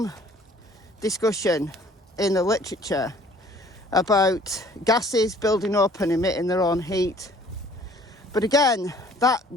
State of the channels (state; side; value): normal; both; correlation 0.55